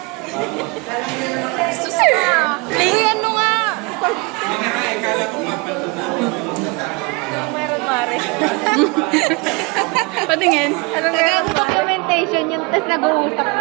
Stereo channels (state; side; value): quieter; left; 28.1 dB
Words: Ayan mo nga. Patingin. Documentation yun, tapos nag-uusap